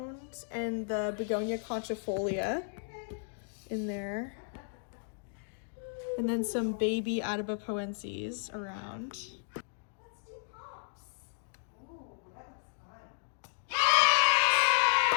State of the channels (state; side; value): silent; right; digital silence